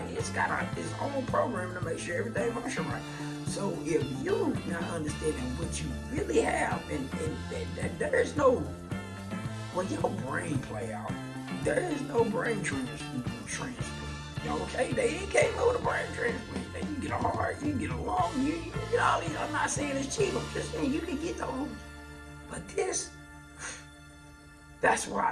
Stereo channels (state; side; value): identical; both; correlation 1.00